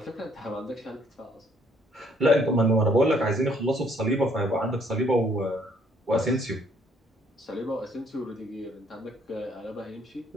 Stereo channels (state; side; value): normal; both; correlation 0.65